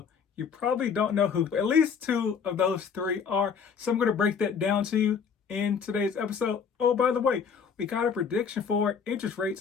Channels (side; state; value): right; quieter; 6.4 dB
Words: You probably don't know who, but at least two of those three are. So I'm going to break that down to you in today's episode. Oh, by the way, we got a prediction for interest